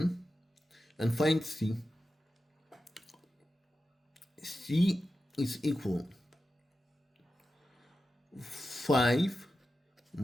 and find c. C is equal 5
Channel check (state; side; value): normal; both; correlation 0.92